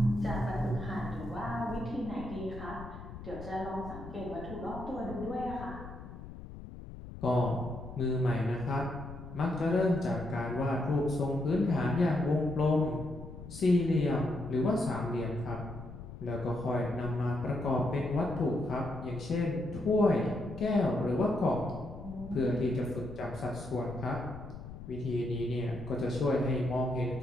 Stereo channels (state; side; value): noise; left; rumble, 12 dB below the sound